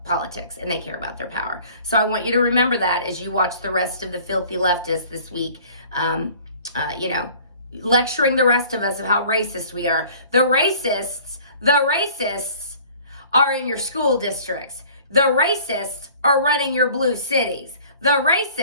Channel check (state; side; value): inverted; both; correlation -0.50